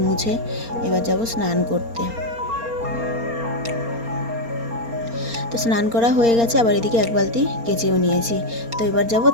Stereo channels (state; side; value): late; left; 4.3 ms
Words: মুছে এবার যাব স্নান করতে। তো স্নান করা হয়ে গেছে, আবার এদিকে এক বালতি কেচেও নিয়েছি। তো এবার যাব